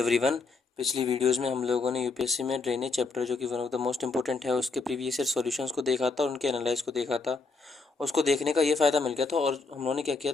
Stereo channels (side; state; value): right; quieter; 4.1 dB